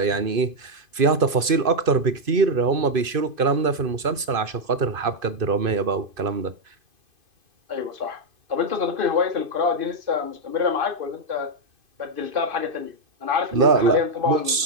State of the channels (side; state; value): left; late; 2.5 ms